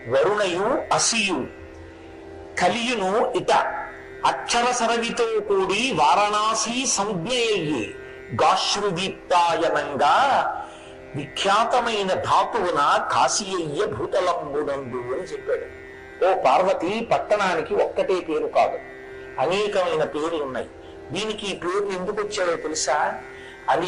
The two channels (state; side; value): identical; both; correlation 1.00